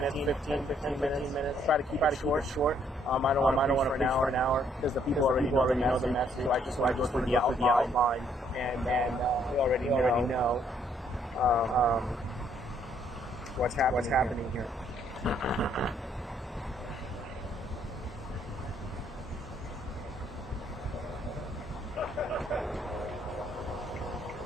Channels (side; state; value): both; normal; correlation 0.68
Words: 15 minutes. Try to keep it short. I don't want to preach for an hour because the people already know the message. So I just want to go through the outline, and we already know what's happening here.